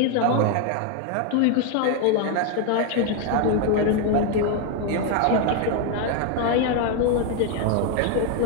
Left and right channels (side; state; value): both; different; correlation 0.01